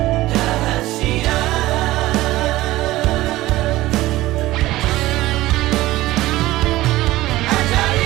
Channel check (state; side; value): quieter; left; 17.1 dB